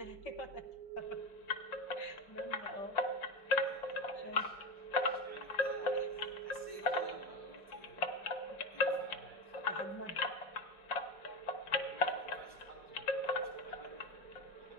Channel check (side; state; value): right; late; 5.6 ms